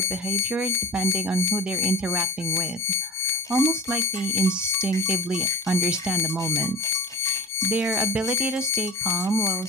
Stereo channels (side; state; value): both; normal; correlation 0.34